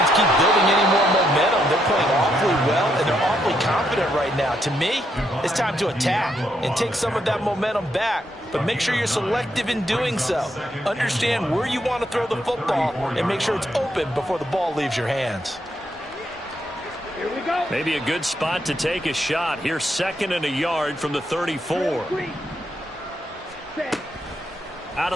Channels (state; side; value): normal; both; correlation 0.77